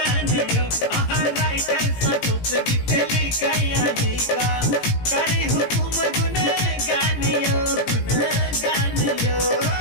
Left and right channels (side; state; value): right; late; 17 ms